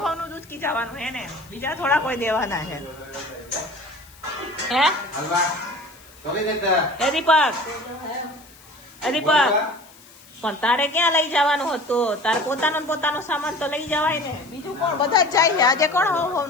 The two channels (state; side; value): noise; left; hiss, 24 dB below the sound